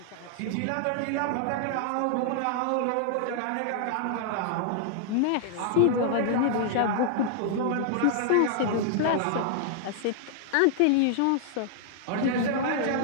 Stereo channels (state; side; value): different; both; correlation -0.01